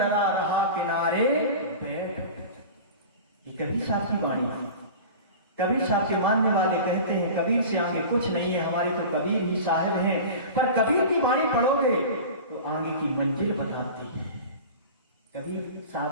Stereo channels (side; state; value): both; inverted; correlation -0.34